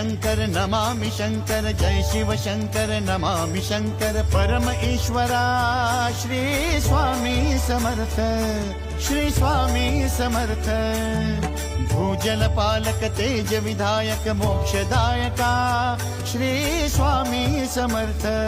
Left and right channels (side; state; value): both; identical; correlation 1.00